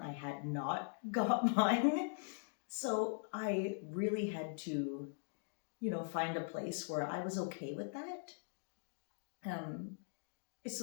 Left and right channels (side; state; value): right; silent; digital silence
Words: I had not got mine. So I really had to, find a place where I was okay with that.